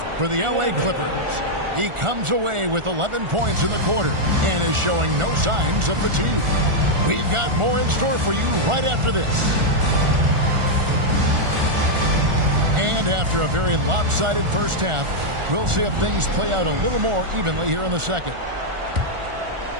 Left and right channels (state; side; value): late; left; 1.4 ms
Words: for the LA Clippers. He comes away with 11 points in the quarter and is showing no signs of fatigue. We've got more in store for you right after this. And after a very lopsided first half, we'll see if things play out a little more evenly here in the second.